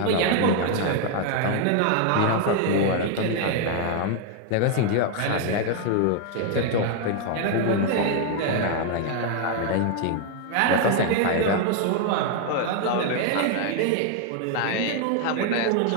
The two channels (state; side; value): different; both; correlation 0.00